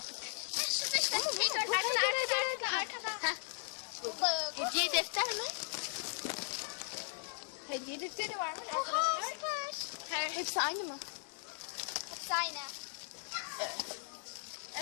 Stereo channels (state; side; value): silent; right; digital silence